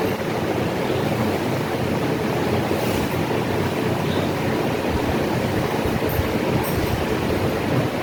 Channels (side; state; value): both; identical; correlation 1.00